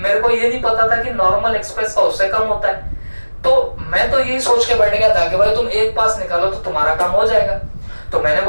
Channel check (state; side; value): inverted; both; correlation -1.00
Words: को ये नहीं पता था कि नॉर्मल एक्सप्रेस का उससे कम होता है। तो मैं तो यही सोच के बैठ गया था कि भाई तुम एक पास निकालो तो तुम्हारा काम हो जाएगा। तो मैंने